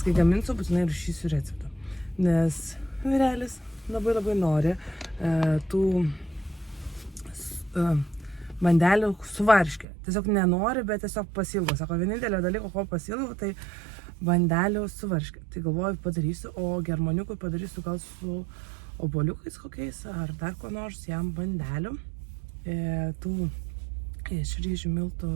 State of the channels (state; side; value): drops out; left; at 9.9 s